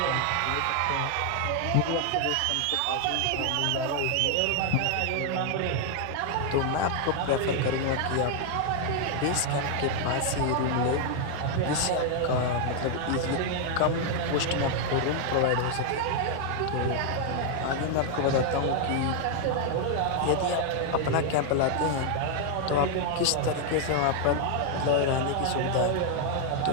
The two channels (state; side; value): different; both; correlation 0.00